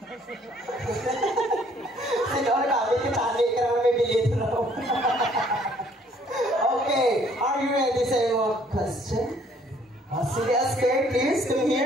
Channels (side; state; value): both; normal; correlation 0.61